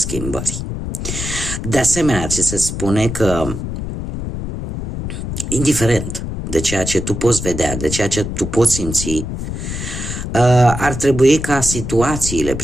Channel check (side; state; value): left; noise; rumble, 5 dB below the sound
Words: De asemenea, ți se spune că, indiferent de ceea ce tu poți vedea, de ceea ce tu poți simți, ar trebui ca situațiile